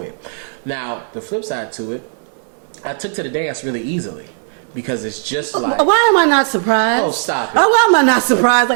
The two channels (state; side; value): silent; left; digital silence